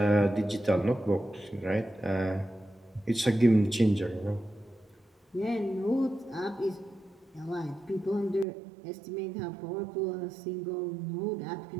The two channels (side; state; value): left; drops out; at 8.5 s